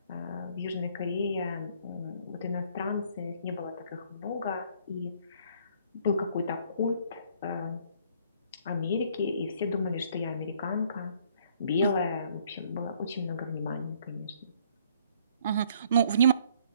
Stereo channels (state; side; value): inverted; both; correlation -0.62